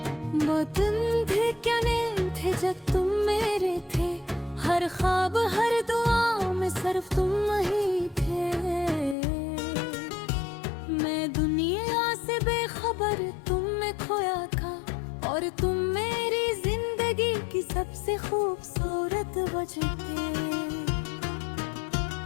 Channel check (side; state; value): right; drops out; at 9.2 s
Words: वो दिन थे क्या दिन थे जब तुम मेरे थे, हर ख्वाब हर दुआ में सिर्फ तुम ही थे। मैं दुनिया से बेखबर तुम में खोया था, और तुम मेरी जिंदगी की सबसे खूबसूरत वजह थे।